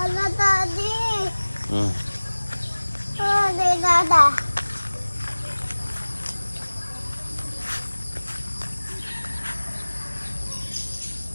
Daddy. Daddy, Dada.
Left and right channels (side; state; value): both; inverted; correlation -1.00